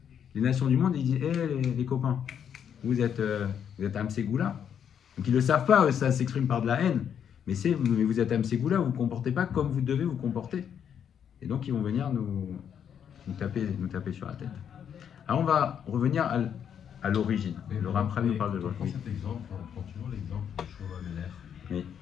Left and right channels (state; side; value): quieter; right; 8.4 dB